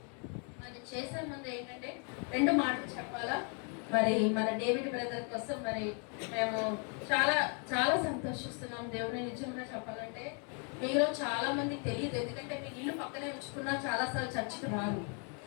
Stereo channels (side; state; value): right; quieter; 38.8 dB